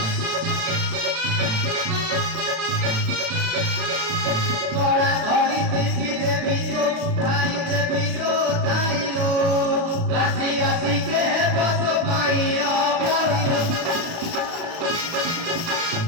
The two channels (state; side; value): late; left; 36 ms